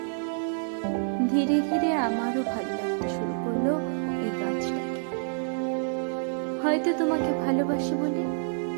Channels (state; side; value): silent; left; digital silence